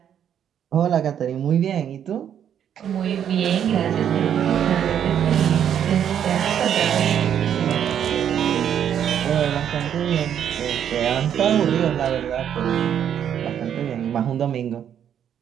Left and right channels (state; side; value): quieter; left; 9.2 dB